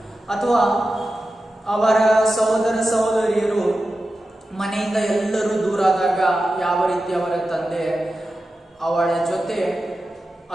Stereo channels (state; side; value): normal; both; correlation 0.92